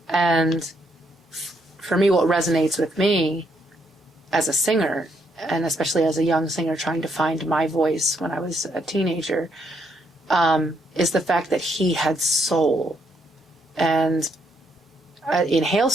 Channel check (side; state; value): both; normal; correlation 0.74